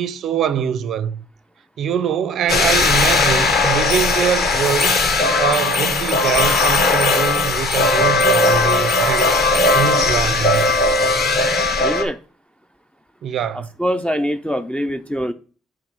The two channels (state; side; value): normal; both; correlation 0.44